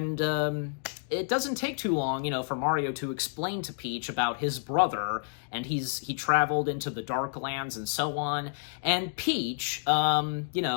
it doesn't take too long, for Mario to explain to Peach about his brother, and he traveled into the Dark Lands and so on, and Peach,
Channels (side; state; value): right; silent; digital silence